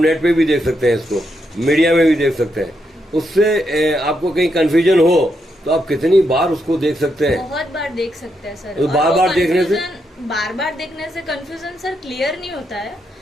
पे भी देख सकते हैं, इसको मीडिया में भी देख सकते हैं. उससे आपको कहीं कंफ्यूजन हो तो आप कितनी बार उसको देख सकते हैं. बहुत बार देख सकते हैं सर. तो बार बार देखने से कंफ्यूजन सर क्लियर नहीं होता है.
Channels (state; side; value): normal; both; correlation 0.81